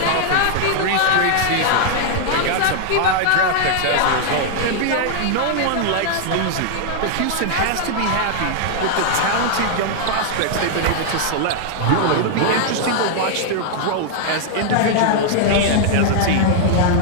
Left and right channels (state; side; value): different; both; correlation -0.01